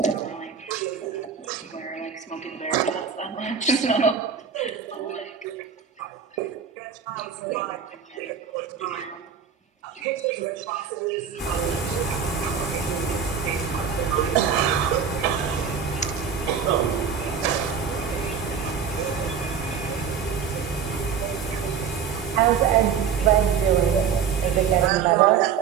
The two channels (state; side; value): quieter; left; 7.0 dB